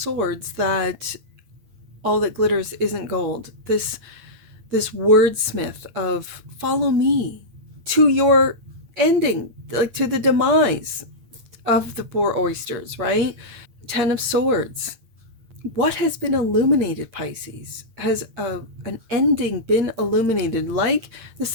that all that glitters isn't gold. This wordsmith of follow me to your ending, like to the demise of the poor oysters, right? Ten of Swords. What has been illuminated, Pisces? Has an ending been illuminated? Like the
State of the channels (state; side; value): late; left; 8.8 ms